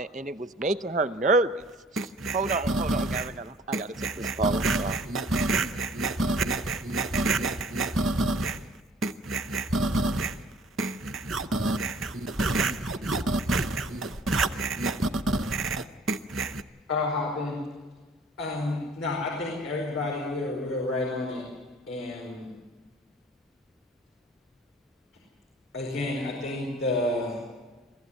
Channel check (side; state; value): both; normal; correlation 0.52